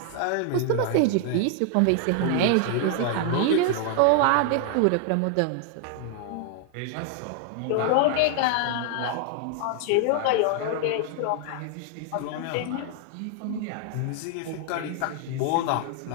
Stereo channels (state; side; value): different; both; correlation 0.00